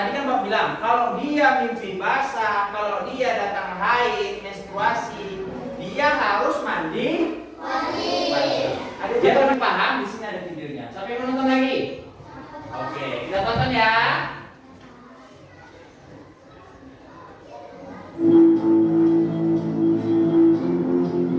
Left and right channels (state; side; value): identical; both; correlation 1.00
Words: kan Bapak bilang kalau dia mimpi basah, kalau dia datang haid, menstruasi, dia harus mandi. Ada yang paham? Di sini ada videonya. Siapa yang mau nonton lagi? Oke, kita tonton ya.